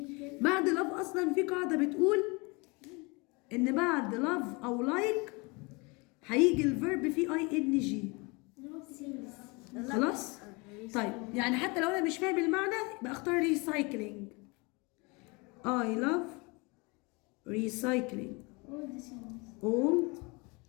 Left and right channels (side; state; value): right; quieter; 27.8 dB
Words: بعد love اصلا في قاعده بتقول ان بعد love او like هيجي الفيرب فيه ing. خلاص؟ طيب يعني حتى لو انا مش فاهم المعنى يبقى اختار recycling. I love recycling old